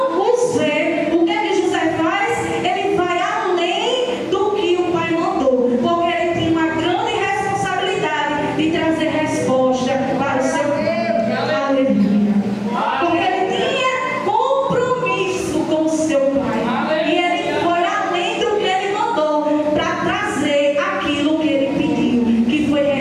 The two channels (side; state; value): both; identical; correlation 1.00